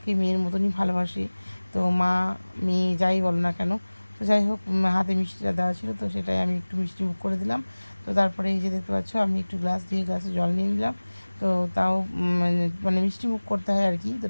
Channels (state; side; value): inverted; both; correlation -1.00